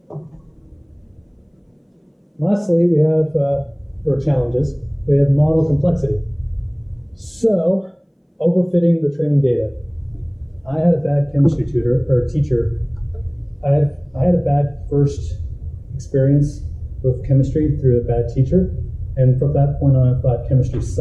Lastly, we have, for challenges, we have model complexity. So, overfitting the training data. I had a bad chemistry teacher. I had a bad first experience with chemistry through a bad teacher. And from that point on, I thought chemistry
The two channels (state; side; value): identical; both; correlation 1.00